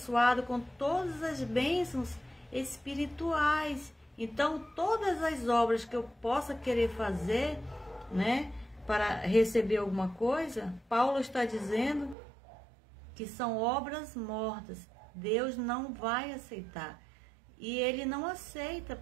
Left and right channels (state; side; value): drops out; left; at 12.2 s